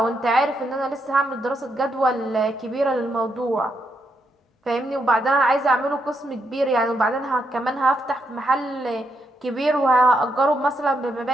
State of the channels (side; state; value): both; normal; correlation 0.80